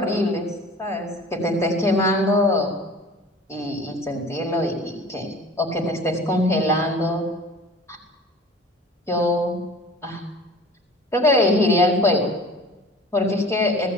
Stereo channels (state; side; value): normal; both; correlation 0.44